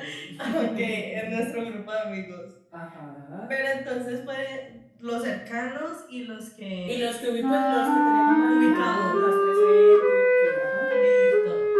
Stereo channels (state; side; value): identical; both; correlation 1.00